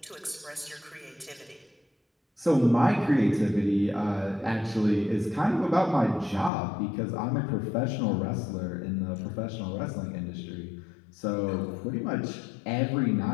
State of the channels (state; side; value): drops out; right; at 6.5 s